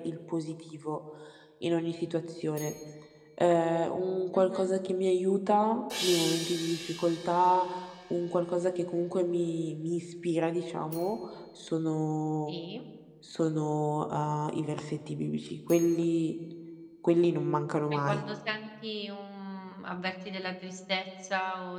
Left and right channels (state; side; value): identical; both; correlation 1.00